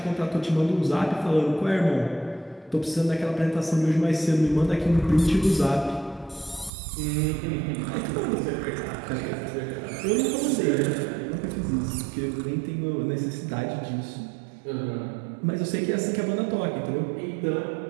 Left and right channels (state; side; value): drops out; left; at 6.7 s